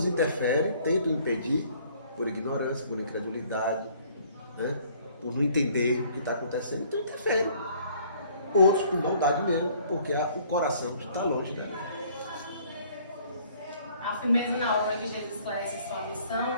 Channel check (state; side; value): inverted; both; correlation -0.58